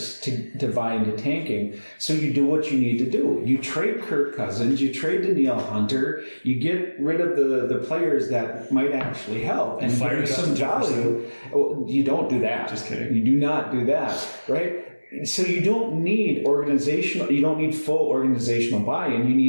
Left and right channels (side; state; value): both; inverted; correlation -1.00